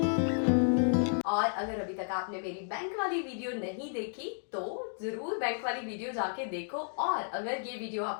और अगर अभी तक आपने मेरी बैंक वाली वीडियो नहीं देखी तो जरूर बैंक वाली वीडियो जाके देखो, और अगर ये वीडियो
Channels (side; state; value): right; silent; digital silence